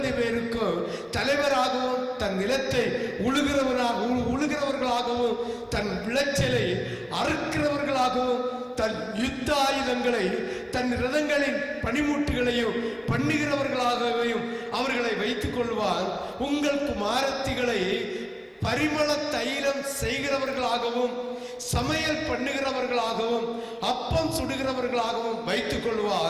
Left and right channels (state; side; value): identical; both; correlation 1.00